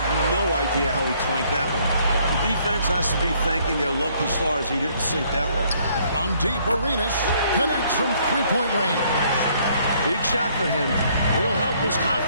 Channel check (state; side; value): inverted; both; correlation -0.65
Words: no idea how he clanked that one. The defense has to be thanking their lucky stars he didn't sink that one. From deep, Arenas connects from three-point range. Big shot for him. It'll help his